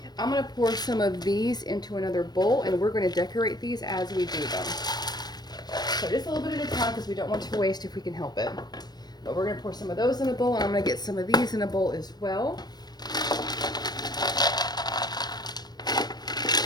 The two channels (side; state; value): right; late; 0.19 ms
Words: I'm going to pour some of these into another bowl, and we're going to decorate these as we do them. So just a little bit at a time because we don't want to waste if we can help it. But we're going to pour some of those in a bowl, and I'm going to get some of these in a bowl as well.